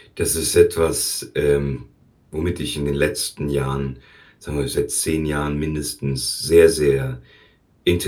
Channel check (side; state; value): both; identical; correlation 1.00